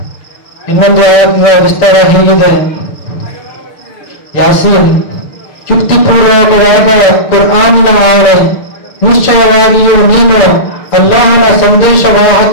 ಇನ್ನೊಂದು ಆಯಾತದ ವಿಸ್ತಾರ ಹೀಗಿದೆ: ಯಾಸೀನ್, ಯುಕ್ತಿಪೂರ್ವಕವಾದ ಕುರ್ಆನಿನ ಆಣೆ. ನಿಶ್ಚಯವಾಗಿಯೂ ನೀನು ಅಲ್ಲಾಹನ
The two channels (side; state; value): right; late; 6.7 ms